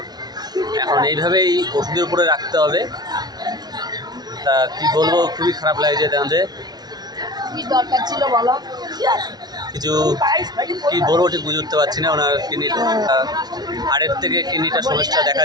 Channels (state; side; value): late; left; 0.19 ms